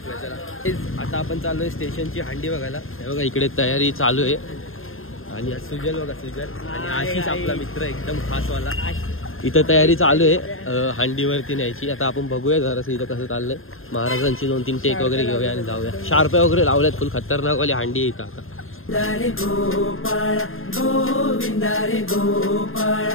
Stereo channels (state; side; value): late; right; 0.60 ms